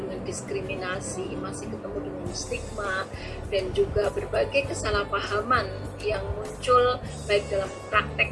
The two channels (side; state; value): both; identical; correlation 1.00